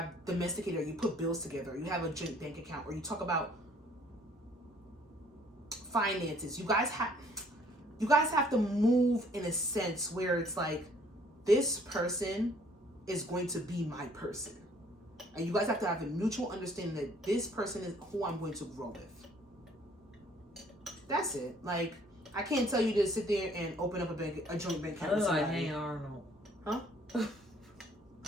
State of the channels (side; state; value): both; normal; correlation 0.60